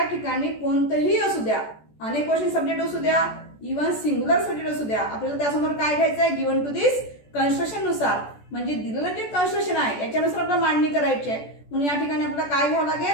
ठिकाणी कोणतंही असू द्या, अनेक क्वेश्चन सब्जेक्ट असू द्या, इव्हन सिंग्युलर सब्जेक्ट असू द्या, आपल्याला त्यासमोर काय घ्यायचं आहे, गिवन टू दिस कन्स्ट्रक्शन नुसार, म्हणजे दिलेलं जे कन्स्ट्रक्शन आहे याच्यानुसार आपल्याला मांडणी करायची आहे. म्हणून या ठिकाणी आपल्याला काय घ्यावं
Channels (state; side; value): late; right; 14 ms